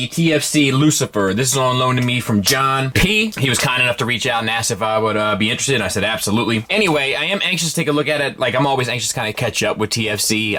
TFC Lucifer. This is on loan to me from John P. He was kind enough to reach out and ask if I would be interested, and I said absolutely. Anyway, I am anxious to take a look at it. Like, I'm always anxious to kind of catch up with TFC.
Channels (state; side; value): identical; both; correlation 1.00